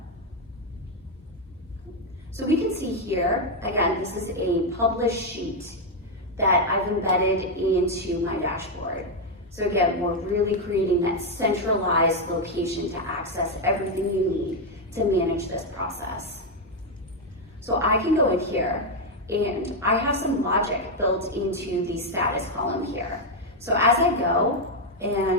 So we can see here, again, this is a published sheet that I've embedded into my dashboard. So again, we're really creating that centralized location to access everything you need to manage this process. So I can go in here and I have some logic built into the status column here. So as I go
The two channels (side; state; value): both; normal; correlation 0.03